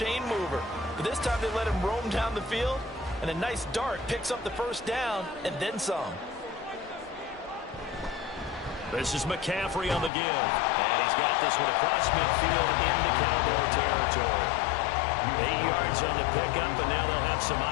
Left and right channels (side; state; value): right; drops out; at 10.1 s